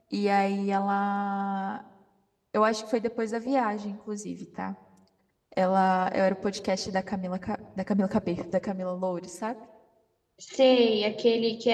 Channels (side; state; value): both; identical; correlation 1.00